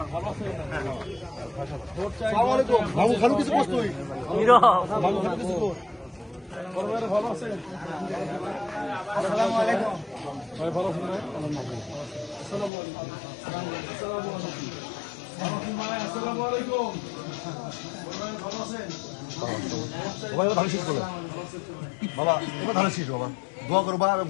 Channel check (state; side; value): drops out; right; at 12.7 s